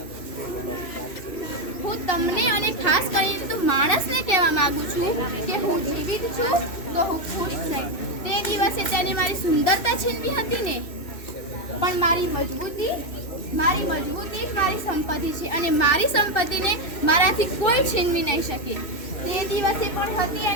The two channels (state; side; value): late; right; 2.6 ms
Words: હું તમને અને ખાસ કરીને તો માણસને કહેવા માંગુ છું કે હું જીવિત છું તો હું ખુશ છું. તે દિવસે તેને મારી સુંદરતા છીનવી હતી ને, પણ મારી મજબૂતી જ મારી સંપત્તિ છે અને મારી સંપત્તિને મારાથી કોઈ છીનવી નહીં શકે. તે દિવસે પણ હતી